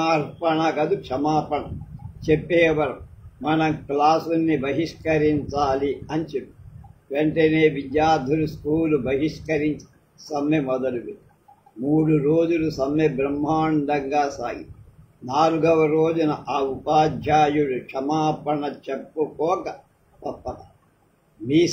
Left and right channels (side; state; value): both; identical; correlation 1.00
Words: చెప్పేవరం మనం క్లాసుని బహిష్కరించాలి అని చెప్పి వెంటనే విద్యార్థులు స్కూలు బహిష్కరించి సమ్మె మొదలుపెట్టారు. 3 రోజులు సమ్మె బ్రహ్మాండంగా సాగి 4వ రోజున ఆ ఉపాధ్యాయుడు క్షమాపణ చెప్పుకోక తప్పక